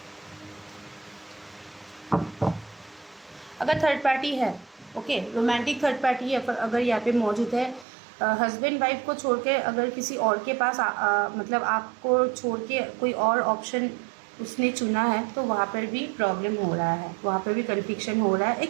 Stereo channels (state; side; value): drops out; left; at 7.9 s